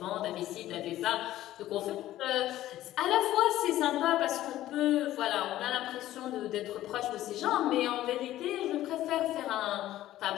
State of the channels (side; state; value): right; quieter; 14.2 dB